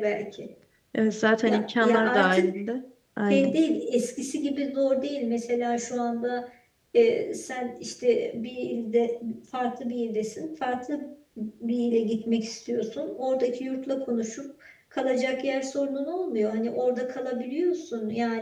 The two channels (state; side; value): identical; both; correlation 1.00